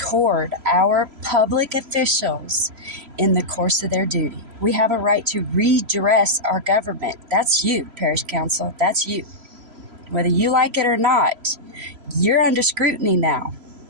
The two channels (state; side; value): late; left; 3.0 ms